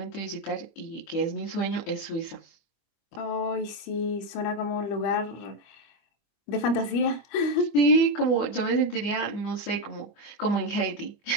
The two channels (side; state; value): right; late; 25 ms